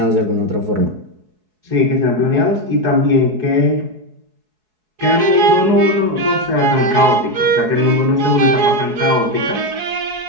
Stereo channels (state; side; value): late; left; 4.7 ms